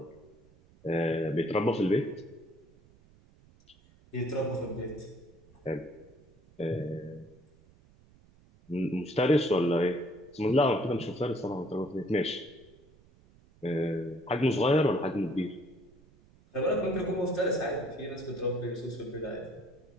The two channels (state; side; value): noise; right; rumble, 28 dB below the sound